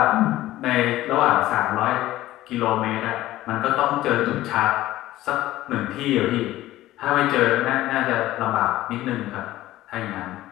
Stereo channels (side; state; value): right; quieter; 15.5 dB